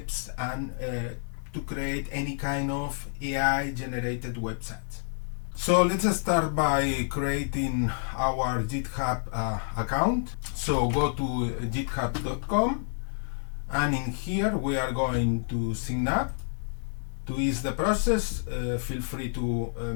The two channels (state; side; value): silent; right; 59 dB below the other